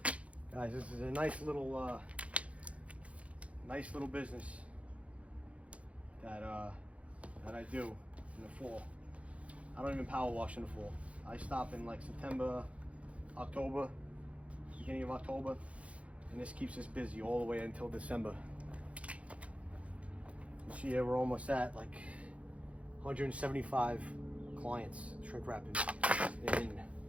Guys, this is a nice little business that I do in the fall. I don't even power wash in the fall. I stop in like September, October, beginning of October, and this keeps us busy all the way until December. This year we're almost at like 175 clients shrink wrapping in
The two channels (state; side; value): late; left; 0.064 ms